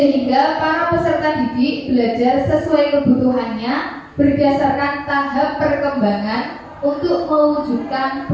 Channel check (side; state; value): both; identical; correlation 1.00